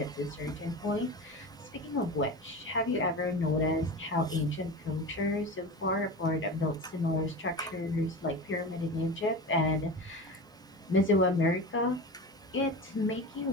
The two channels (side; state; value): both; normal; correlation 0.29